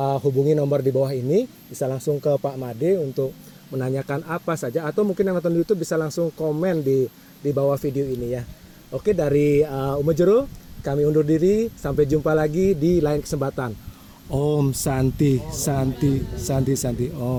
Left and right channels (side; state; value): both; identical; correlation 1.00